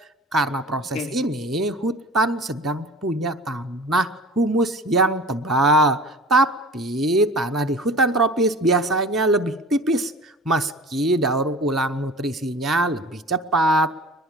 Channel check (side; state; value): both; normal; correlation 0.40